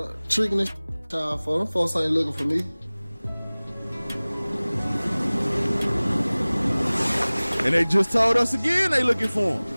tricking this child for them. Folks ain't looking for me. And they just told us again they looking for him.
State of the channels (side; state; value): both; inverted; correlation -1.00